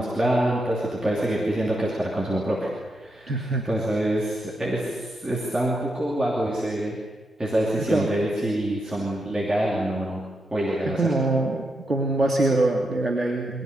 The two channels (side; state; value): both; normal; correlation 0.83